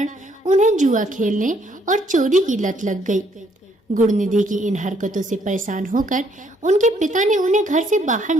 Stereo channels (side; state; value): both; normal; correlation 0.68